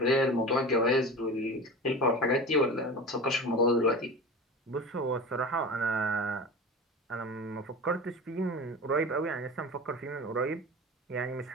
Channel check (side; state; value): both; normal; correlation 0.32